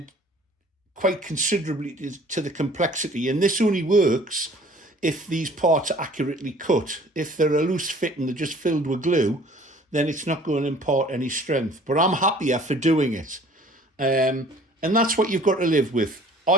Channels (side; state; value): both; normal; correlation 0.52